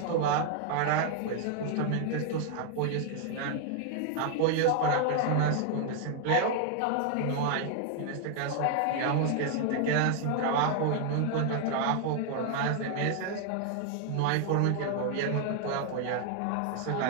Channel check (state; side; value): different; both; correlation 0.00